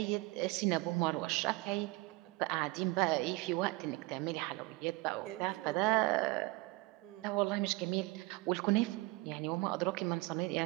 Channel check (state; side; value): quieter; left; 22.9 dB